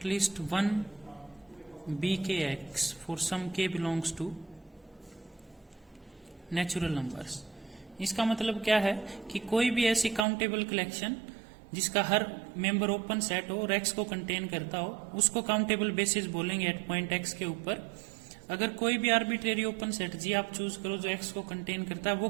least one bkx for some k belongs to natural numbers. इसका मतलब क्या है कि कोई भी ऐसी काउंटेबल कलेक्शन जिसका हर मेंबर ओपन सेट हो और एक्स को कंटेन करता हो, उसको काउंटेबल बेसिस बोलेंगे एट पॉइंट एक्स के ऊपर। अगर कोई भी आर्बिट्रेरी ओपन सेट जी आप चूज करो जो एक्स को कंटेन करता है, वो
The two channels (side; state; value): left; drops out; at 10.2 s